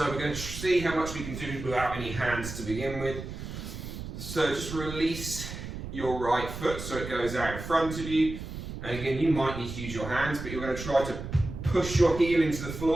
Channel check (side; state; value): right; noise; rumble, 8 dB below the sound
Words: we're going to see how much we can do without any hands to begin with. So just release your right foot so it goes out in front of you. And again, you might need to use your hands, but you're going to try to push your heel into the